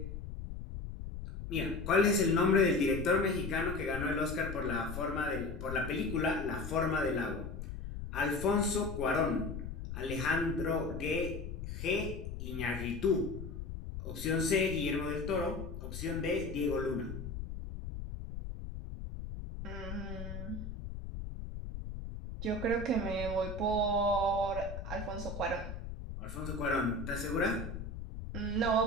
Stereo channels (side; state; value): left; noise; rumble, 7 dB below the sound